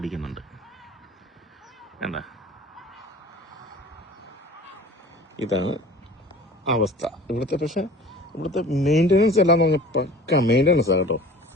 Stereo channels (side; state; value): both; normal; correlation 0.43